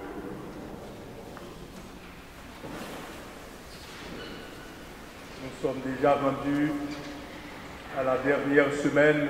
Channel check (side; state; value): both; identical; correlation 1.00